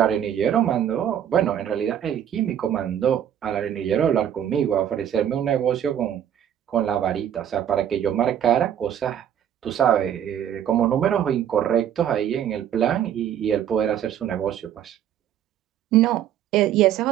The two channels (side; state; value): left; quieter; 9.9 dB